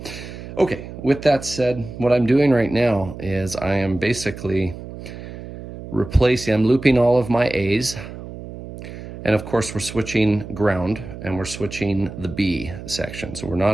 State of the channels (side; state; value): right; noise; hum, 12 dB below the sound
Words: Okay, with that said, what I'm doing right now is I am basically I'm looping all of my A's, and of course we're switching ground and we're switching the B section. So we're